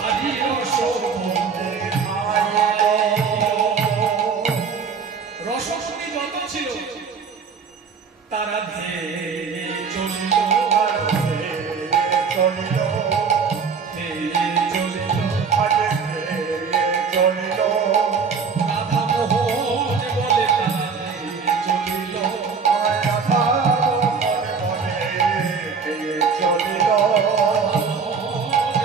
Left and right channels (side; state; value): left; quieter; 5.7 dB